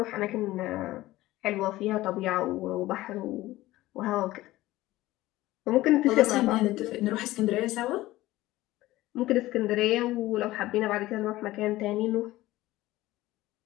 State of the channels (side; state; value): right; quieter; 17.0 dB